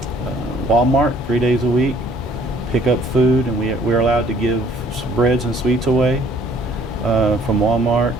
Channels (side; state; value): both; normal; correlation 0.59